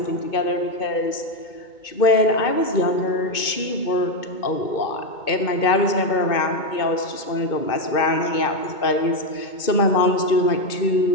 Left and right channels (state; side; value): late; right; 2.2 ms